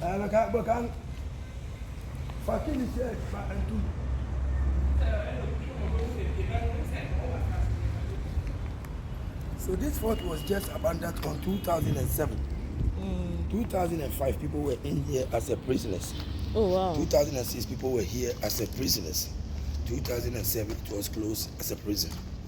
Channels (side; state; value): both; identical; correlation 1.00